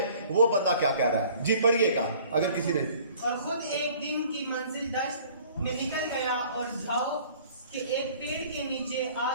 वो बंदा क्या कह रहा है? जी पढ़िएगा अगर किसी ने। और खुद एक दिन की मंजिल दश्त में निकल गया और झाओ के एक पेड़ के नीचे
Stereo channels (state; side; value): inverted; both; correlation -0.52